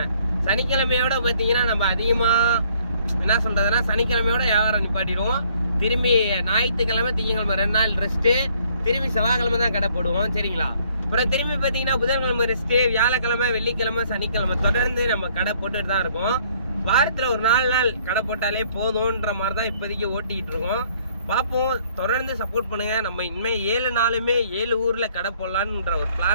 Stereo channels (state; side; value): inverted; both; correlation -0.63